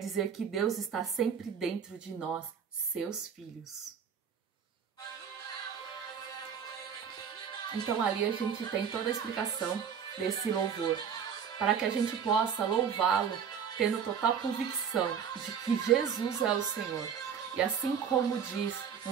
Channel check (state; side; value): quieter; left; 7.4 dB